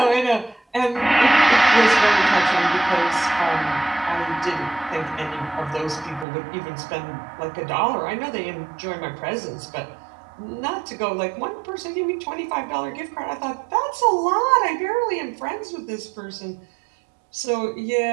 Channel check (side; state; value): left; drops out; at 6.2 s